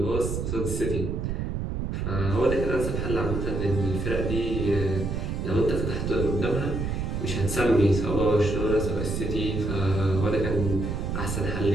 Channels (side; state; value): right; noise; rumble, 2 dB below the sound